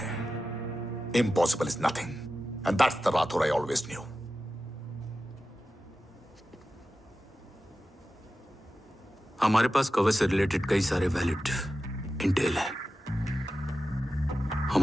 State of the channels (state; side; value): normal; both; correlation 0.93